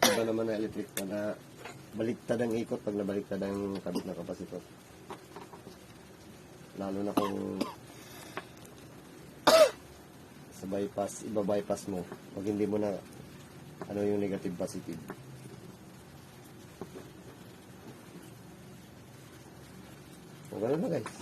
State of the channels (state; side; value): identical; both; correlation 1.00